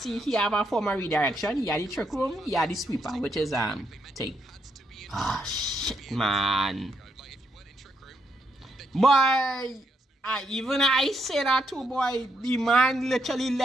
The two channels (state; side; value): normal; both; correlation 0.78